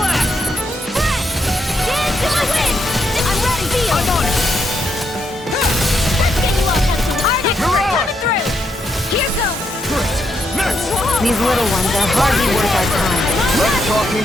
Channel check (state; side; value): normal; both; correlation 0.79